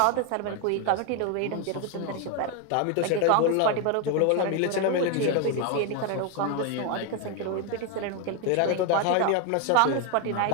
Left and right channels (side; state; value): both; different; correlation 0.01